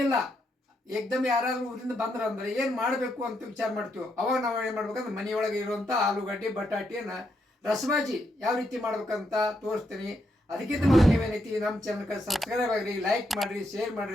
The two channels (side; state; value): both; normal; correlation 0.79